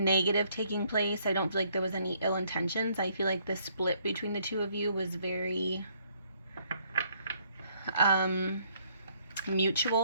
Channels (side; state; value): both; inverted; correlation -0.67